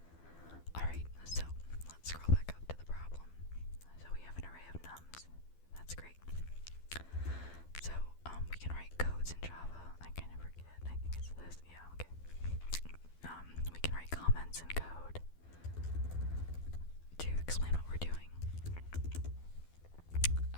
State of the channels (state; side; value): late; right; 12 ms